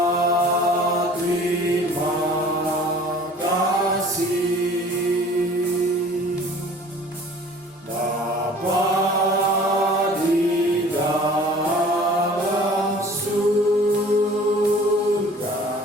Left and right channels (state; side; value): normal; both; correlation 0.48